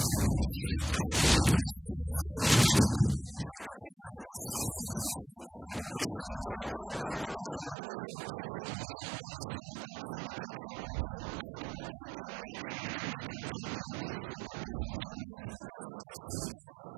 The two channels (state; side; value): drops out; left; at 7.8 s